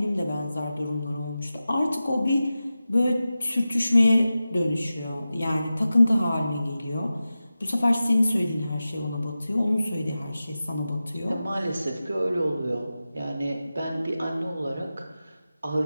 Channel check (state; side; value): inverted; both; correlation -0.94